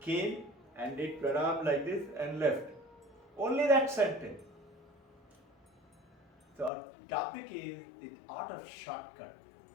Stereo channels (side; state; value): right; drops out; at 6.7 s